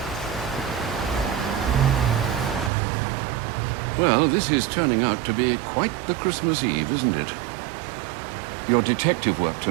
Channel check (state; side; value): drops out; left; at 2.7 s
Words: Well, this is turning out to be quite the Christmas Eve, isn't it? Your detective work